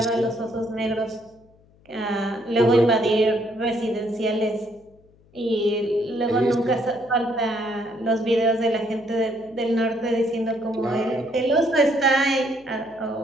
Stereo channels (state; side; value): noise; left; hum, 30 dB below the sound